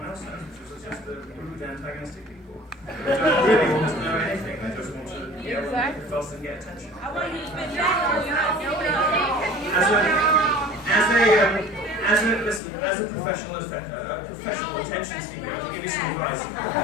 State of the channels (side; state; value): right; drops out; at 12.6 s